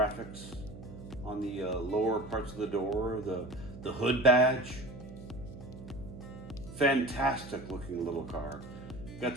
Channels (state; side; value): noise; right; hum, 14 dB below the sound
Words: on the lower parts of the door, the hood badge. Fantastic looking little car. Got